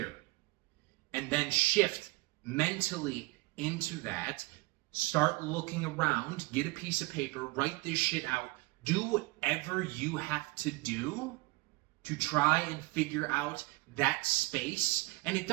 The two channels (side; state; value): left; quieter; 23.8 dB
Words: And then shift mentally into that. Start looking around. Get a piece of paper. Write this shit out. Do whatever you have to do to try and figure out that space. And it